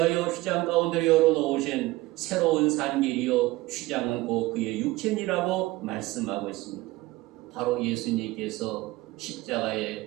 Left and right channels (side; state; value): left; quieter; 19.0 dB